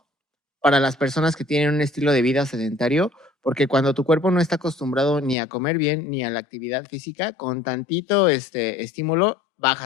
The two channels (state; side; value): drops out; right; at 5.4 s